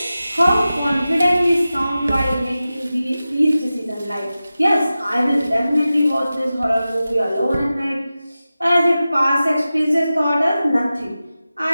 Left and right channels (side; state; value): both; inverted; correlation -0.95